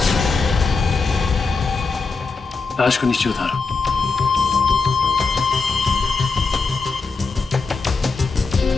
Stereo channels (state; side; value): quieter; right; 4.3 dB